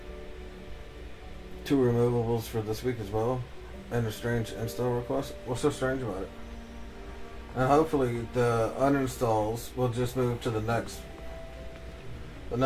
Two removables for this week as well, and a strange install request. What's so strange about it? And hopefully the uninstalls will just move to the next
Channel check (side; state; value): both; identical; correlation 1.00